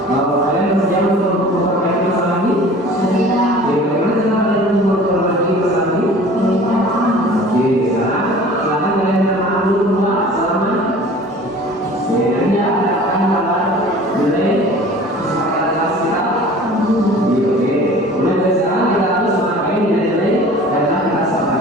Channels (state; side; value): normal; both; correlation 0.44